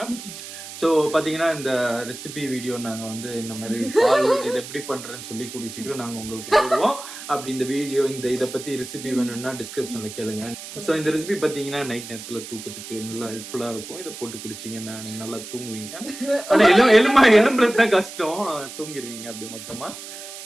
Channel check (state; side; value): noise; right; hiss, 12 dB below the sound